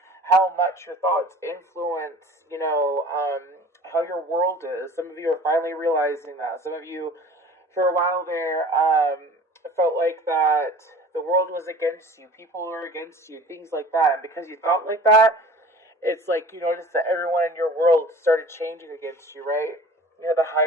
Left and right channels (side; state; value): both; normal; correlation 0.43